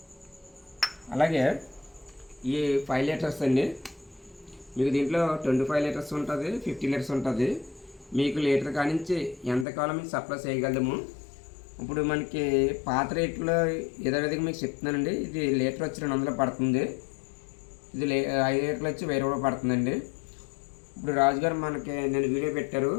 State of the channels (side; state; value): right; drops out; at 9.7 s